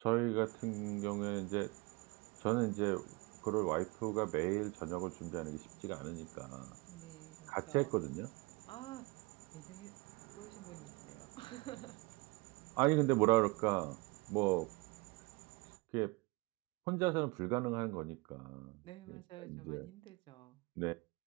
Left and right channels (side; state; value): left; quieter; 26.0 dB